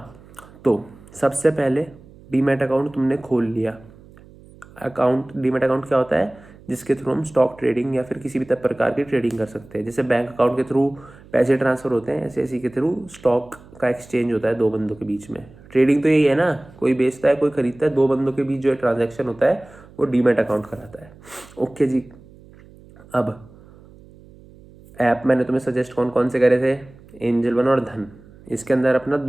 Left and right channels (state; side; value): noise; right; hum, 23 dB below the sound